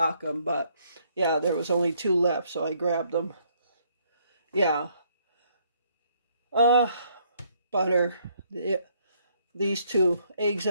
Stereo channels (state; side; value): inverted; both; correlation -0.68